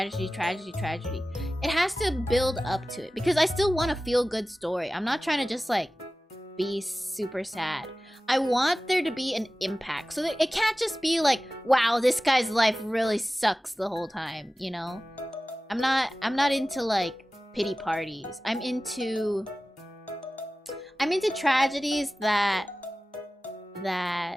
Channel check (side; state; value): both; normal; correlation 0.96